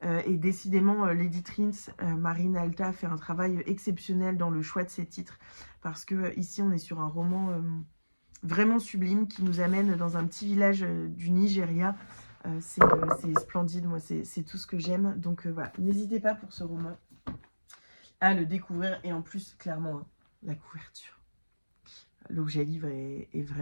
Et décidément, l'éditrice Marine Alta fait un travail exceptionnel dans le choix de ses titres, parce que ici on est sur un roman... vraiment sublime, qui nous amène dans un petit village du Nigeria, C'est splendide, moi c'est tout ce que j'aime. Donc voilà, n'hésitez pas pour ce roman à le découvrir. Et en plus, clairement, hein, la couverture, l'objet livre est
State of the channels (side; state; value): both; inverted; correlation -1.00